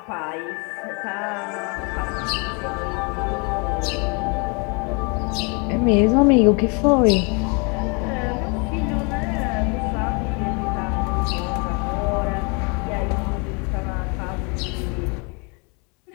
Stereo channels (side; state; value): right; quieter; 33.1 dB